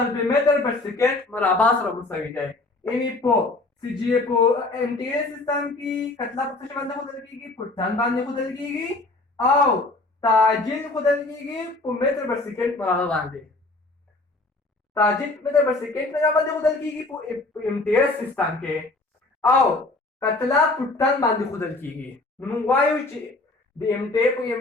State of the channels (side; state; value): right; quieter; 3.1 dB